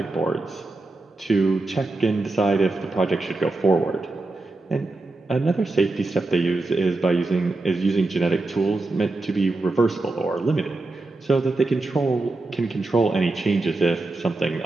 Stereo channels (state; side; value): quieter; left; 3.1 dB